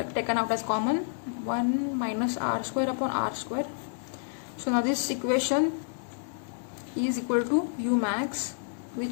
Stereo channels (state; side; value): silent; right; digital silence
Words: taken out as common, 1 minus r square upon r square. So now this equation is equal to u max,